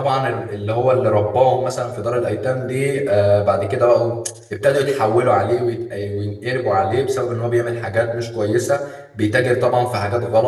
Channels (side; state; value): both; identical; correlation 1.00